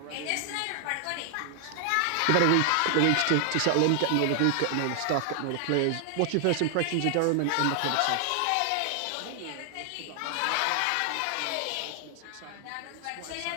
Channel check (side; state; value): both; different; correlation 0.00